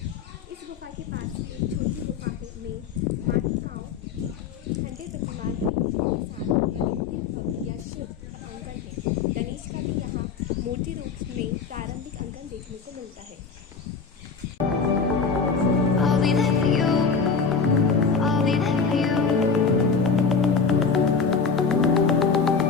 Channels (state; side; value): quieter; right; 5.4 dB